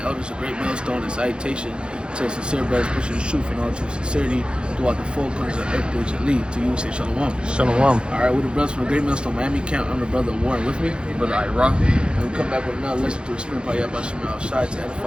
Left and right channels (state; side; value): late; left; 0.052 ms